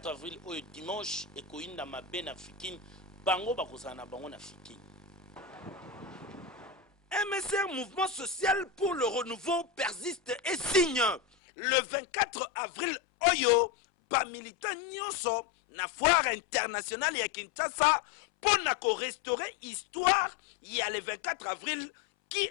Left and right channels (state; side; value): drops out; right; at 11.2 s